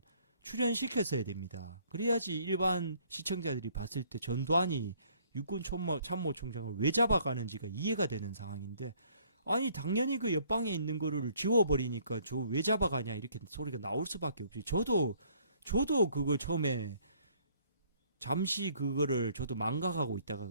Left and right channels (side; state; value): both; inverted; correlation -0.62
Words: 출연시켰어야 됩니다. 그래야지 일반 시청자들이 봤을 때 전두환이 육군 참모총장을 왜 잡아가는지가 이해가 되는 상황인데, 아니 당연히 그 옆방에 있는 거를 지워버리니까 저 왜 잡아가냐 이렇게 소리가 나올 수밖에 없지. 저도 그걸 처음에 잠시 그거를 저도 망각하고 있다가